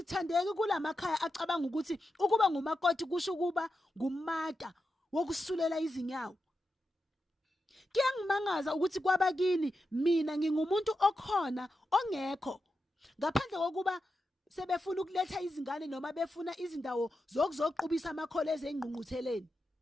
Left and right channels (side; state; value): both; normal; correlation 0.89